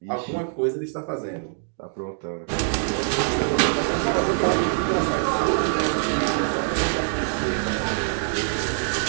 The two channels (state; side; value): silent; left; digital silence